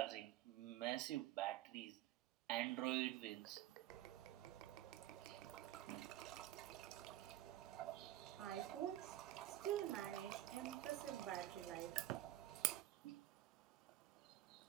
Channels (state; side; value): quieter; left; 14.1 dB